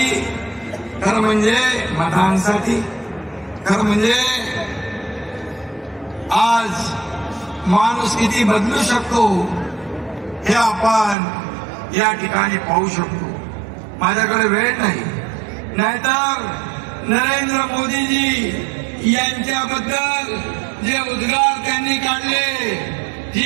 खरं म्हणजे मतांसाठी, खरं म्हणजे आज माणूस किती बदलू शकतो हे आपण या ठिकाणी पाहू शकतो। माझ्याकडे वेळ नाही, नाहीतर नरेंद्र मोदीजी यांच्याबद्दल जे उद्गार त्यांनी काढले,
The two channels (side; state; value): left; drops out; at 11.2 s